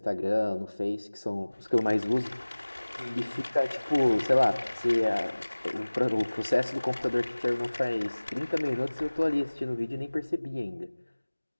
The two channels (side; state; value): both; inverted; correlation -1.00